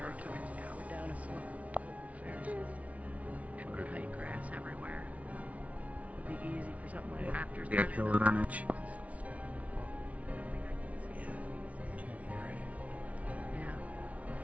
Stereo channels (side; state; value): left; late; 0.067 ms